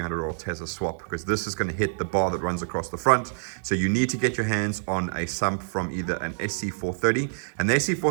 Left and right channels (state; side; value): silent; left; digital silence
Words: or Tesla swap, because this is gonna hit the bar that runs across the front. So you need to get your hands on a sump from either an SC430, and the